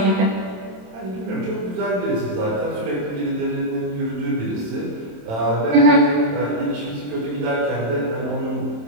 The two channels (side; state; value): left; late; 27 ms